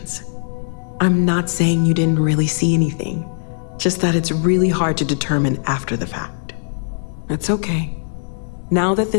I'm not saying you didn't really see anything, just that it's really hard to determine after the fact. It's okay. Now that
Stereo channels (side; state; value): right; silent; digital silence